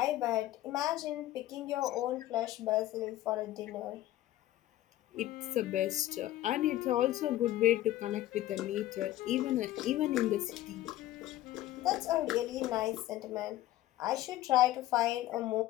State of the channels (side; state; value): right; quieter; 14.7 dB